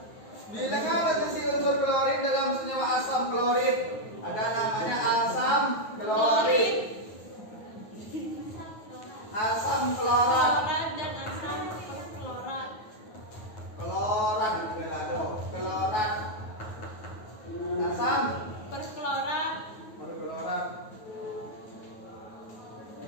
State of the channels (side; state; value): right; late; 9.4 ms